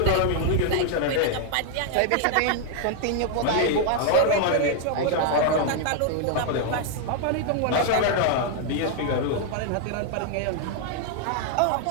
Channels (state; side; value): different; both; correlation 0.00